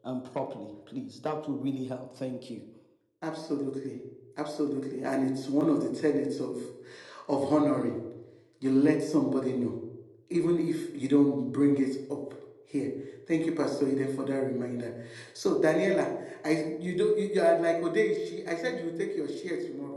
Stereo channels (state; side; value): identical; both; correlation 1.00